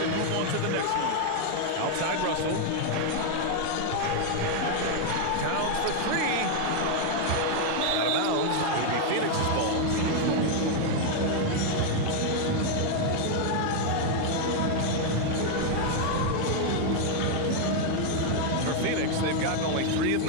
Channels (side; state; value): both; different; correlation 0.00